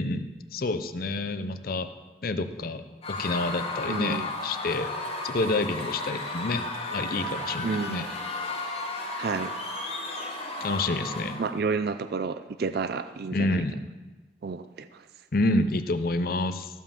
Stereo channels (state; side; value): normal; both; correlation 0.36